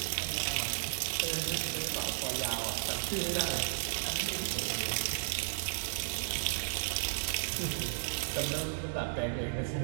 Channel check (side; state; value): left; silent; digital silence